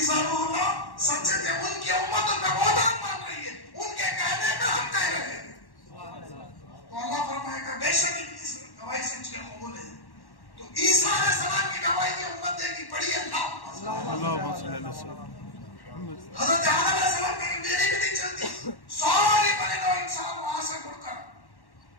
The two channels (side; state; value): right; late; 1.1 ms